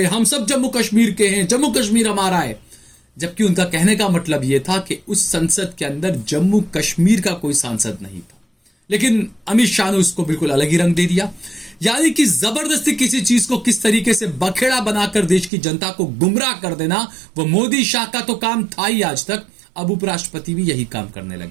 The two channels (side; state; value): left; drops out; at 15.5 s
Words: हम सब जम्मू कश्मीर के हैं, जम्मू कश्मीर हमारा है। जबकि उनका कहने का मतलब यह था कि उस संसद के अंदर जम्मू कश्मीर का कोई सांसद नहीं था। लेकिन अमित शाह ने उसको बिल्कुल अलग ही रंग दे दिया। यानी कि जबरदस्ती किसी चीज को किस तरीके से बखेड़ा बनाकर देश की जनता को गुमराह कर देना, वो मोदी शाह का तो काम था ही आज तक। अब उपराष्ट्रपति भी यही काम करने लग